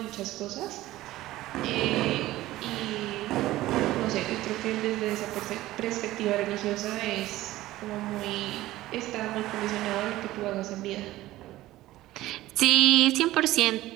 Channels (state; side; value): quieter; left; 16.3 dB